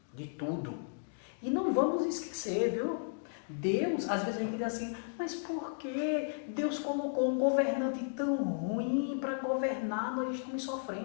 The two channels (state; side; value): silent; right; digital silence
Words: de tudo. E não vamos esquecer, viu? Deus, às vezes a gente diz assim, mas por que Deus colocou um governante tão ruim para governar, nós estamos